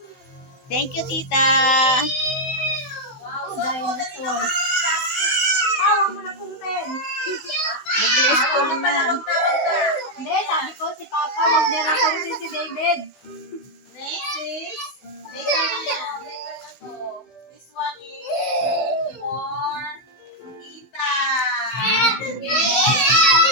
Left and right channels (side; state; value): right; late; 16 ms